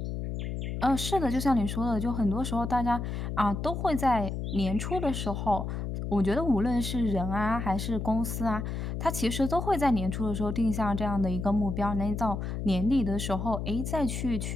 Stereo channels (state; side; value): noise; left; hum, 4 dB below the sound